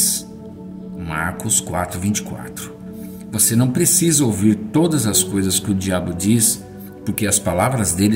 Marcos 4:24. Você não precisa ouvir todas as coisas que o diabo diz, porque as palavras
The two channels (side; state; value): both; identical; correlation 1.00